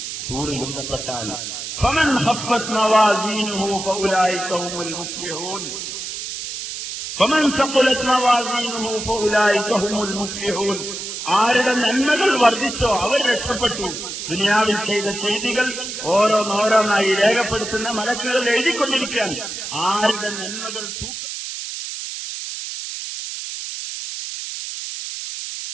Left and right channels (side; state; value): right; noise; hiss, 7 dB below the sound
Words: സൂറിൽ ബന്ധപ്പെട്ടാൽ. فمن خفت موازينه فأولئك هم المفلحون. فمن ثقلت موازينه فأولئك هم المفلحون. ആരുടെ നന്മകൾ വർദ്ധിച്ചോ അവർ രക്ഷപ്പെട്ടു. ദുനിയാവിൽ ചെയ്ത ചെയ്തികൾ ഓരോന്നോരോന്നായി രേഖപ്പെടുത്തുന്ന മലക്കുകൾ എഴുതിക്കൊണ്ടിരിക്കാൻ ആരുടെ നന്മകൾ